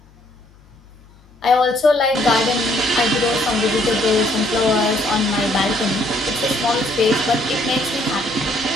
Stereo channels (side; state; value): left; noise; hum, 27 dB below the sound